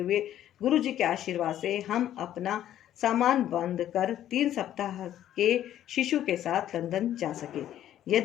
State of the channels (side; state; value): right; quieter; 11.7 dB